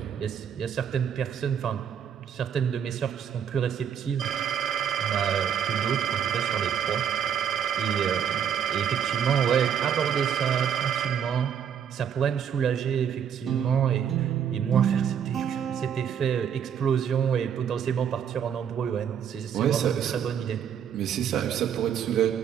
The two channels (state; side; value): quieter; left; 8.4 dB